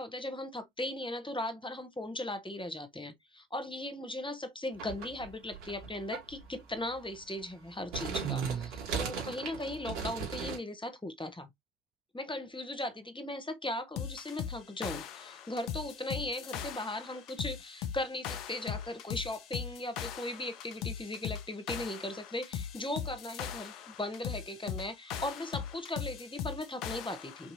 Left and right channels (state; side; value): normal; both; correlation 0.47